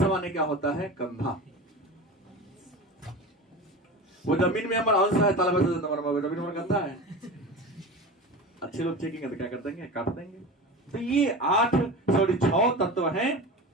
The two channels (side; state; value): both; normal; correlation 0.30